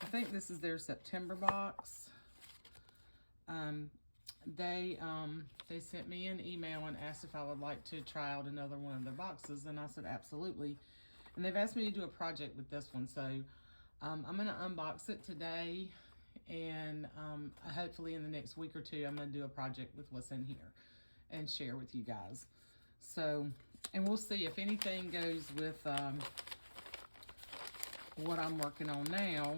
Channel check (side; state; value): both; inverted; correlation -1.00